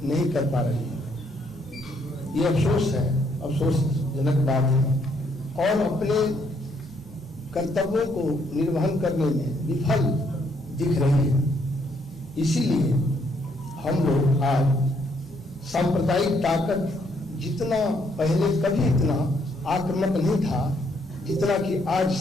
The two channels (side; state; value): both; normal; correlation 0.71